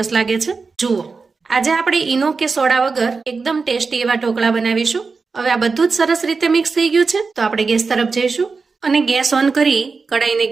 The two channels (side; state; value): left; quieter; 4.6 dB